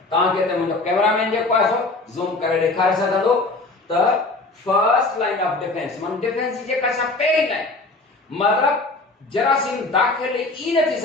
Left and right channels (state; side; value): quieter; right; 3.2 dB